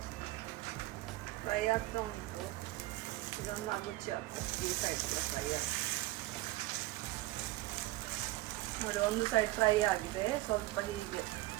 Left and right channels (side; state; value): left; quieter; 18.6 dB